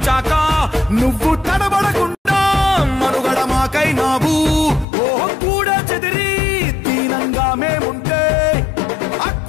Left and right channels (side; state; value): right; drops out; at 4.9 s